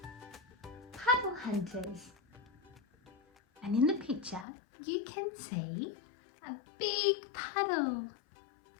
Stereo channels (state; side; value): drops out; right; at 4.5 s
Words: Puddle Hunters. And in the picture you can see a big puddle.